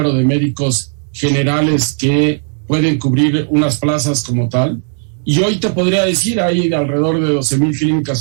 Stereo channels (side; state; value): left; silent; digital silence